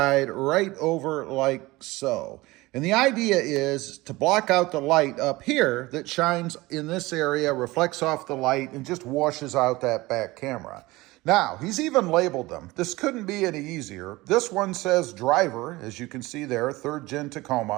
right over like so. And the idea is to block out the light up here that shines in this area, reflects off the light, and just washes out that back camera. Now, he's even labeled them. This couldn't be any easier. This one says driver, as you can see there, 3rd Gen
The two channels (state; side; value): quieter; left; 20.5 dB